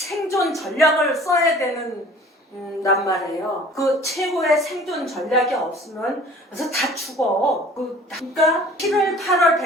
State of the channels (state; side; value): normal; both; correlation 0.48